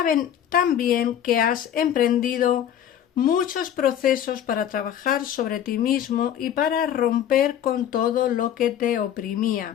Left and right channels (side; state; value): right; quieter; 10.0 dB